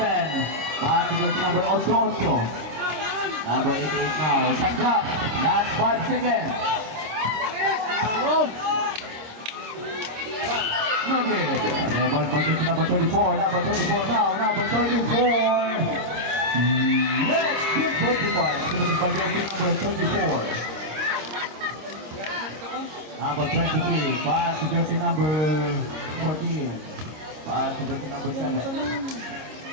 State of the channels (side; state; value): left; late; 26 ms